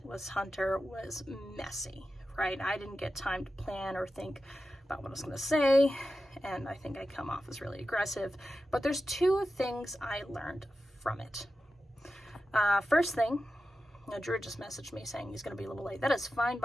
with Hunter was messy, right? I didn't get time to plan or think about what I was going to say, and I think I come off as really aggressive. But there's two things I learned from it. First thing, Drew just messaged me saying he's going to be a little late. That is fine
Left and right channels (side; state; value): both; normal; correlation 0.92